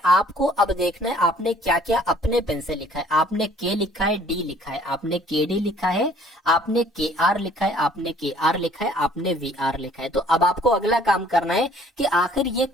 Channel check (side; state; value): both; normal; correlation 0.57